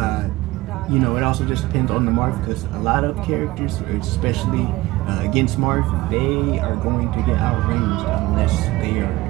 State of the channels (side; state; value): left; quieter; 19.0 dB